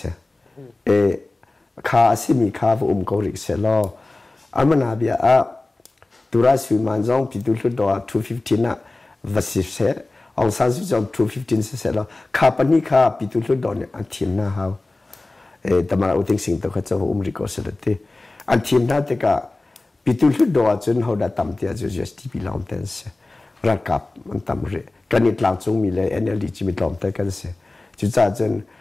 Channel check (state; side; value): quieter; right; 3.0 dB